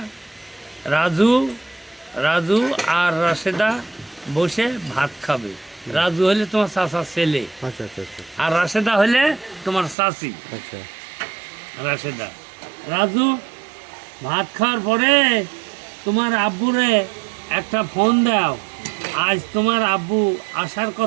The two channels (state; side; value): drops out; left; at 10.0 s